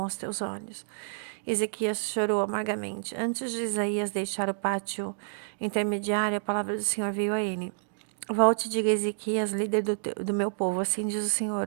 aos teus olhos. Ezequias chorou amargamente. Antes de Isaías deixar o pátio intermediário, a palavra do Senhor veio a ele. Volte e diga a Ezequias, líder do meu povo, assim diz o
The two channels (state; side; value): silent; left; digital silence